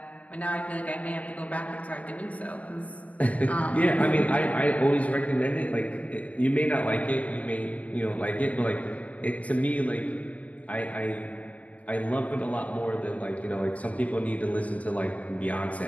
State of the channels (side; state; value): right; late; 0.068 ms